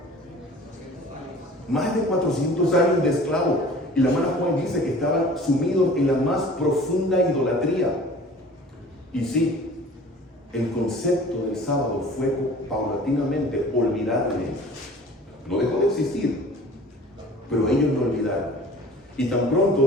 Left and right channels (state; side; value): normal; both; correlation 0.46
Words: Más de 400 años de esclavo. Y la hermana Juan dice que estaban sumidos en la más profunda idolatría. Y sí, el concepto del sábado fue paulatinamente olvidado de ellos. No dejó de existir, pero ellos lo olvidaron. Y tan